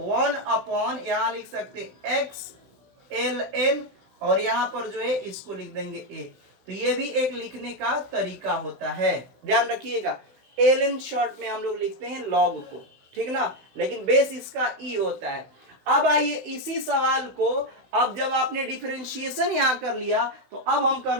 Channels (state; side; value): late; left; 16 ms